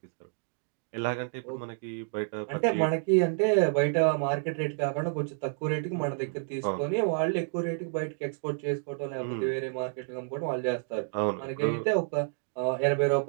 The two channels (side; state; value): left; silent; digital silence